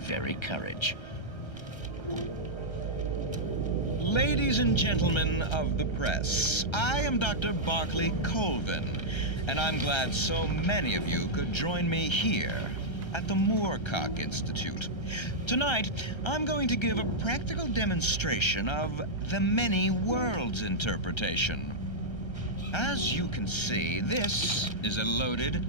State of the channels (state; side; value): late; right; 1.3 ms